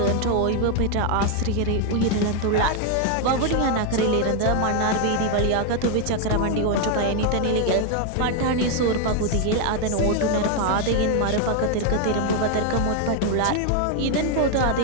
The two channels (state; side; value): different; both; correlation 0.01